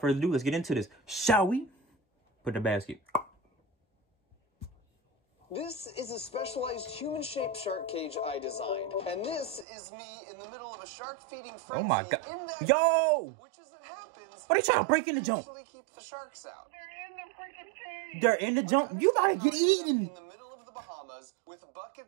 further ado, let's get into this. Shall we? Put in the basket. This is a specialized human-shaped shark cage I designed. And this is me in the middle of a shark-feeding frenzy. Oh my god. In that Yo! which, as it happens, what are you trying to break in the jump? Keep the sharks out. They're in the jump. You gotta get eaten. In the middle of the Bahamas, with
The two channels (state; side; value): drops out; left; at 9.7 s